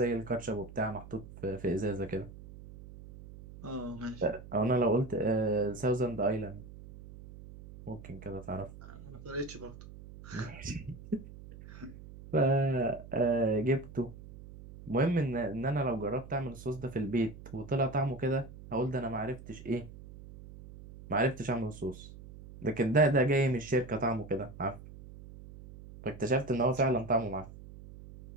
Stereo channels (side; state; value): right; noise; hum, 16 dB below the sound